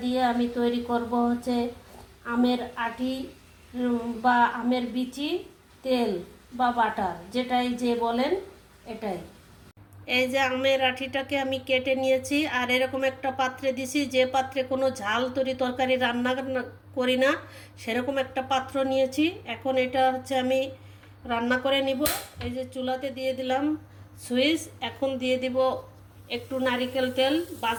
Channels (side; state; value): both; identical; correlation 1.00